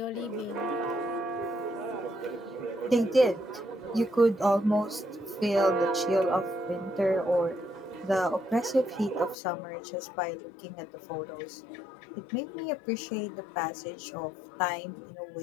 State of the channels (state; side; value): drops out; right; at 9.3 s